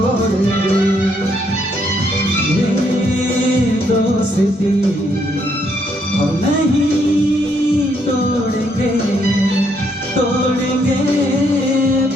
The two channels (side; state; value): both; normal; correlation 0.73